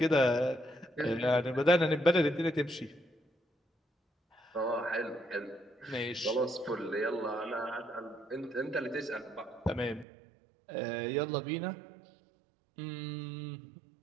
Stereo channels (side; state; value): left; drops out; at 10.1 s